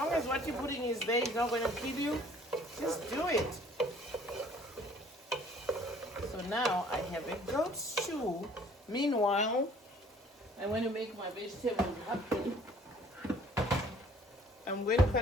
as what you're putting is there, it's not gonna kill you, just do it. So now I have a goat stew. Meanwhile, I'm going to make my vegetables happen. I'm going to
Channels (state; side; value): normal; both; correlation 0.55